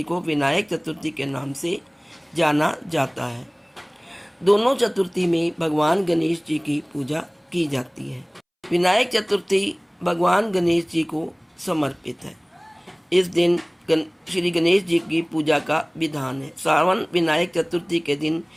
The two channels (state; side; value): identical; both; correlation 1.00